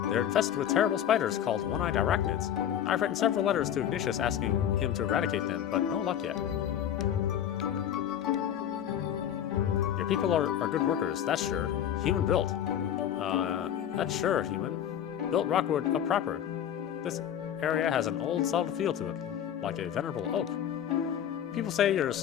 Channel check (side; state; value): right; quieter; 10.0 dB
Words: They're infested with terrible spiders called one-eyed arachnids. I've written several letters to Ignatius asking him to eradicate them, but no luck yet. Your people are good workers, that's sure. Human built. That's sure, human. Built Rockwood up proper. This area has an old, solid feel to it, like a venerable oak. People say you're